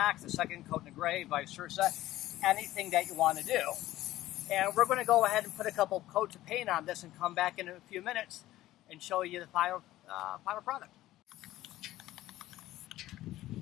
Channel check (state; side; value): quieter; right; 15.4 dB